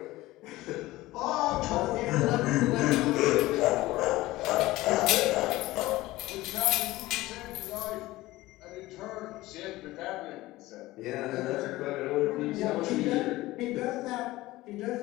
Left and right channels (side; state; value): right; quieter; 18.1 dB